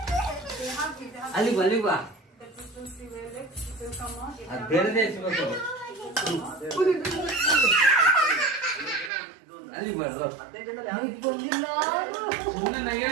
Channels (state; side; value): drops out; left; at 9.1 s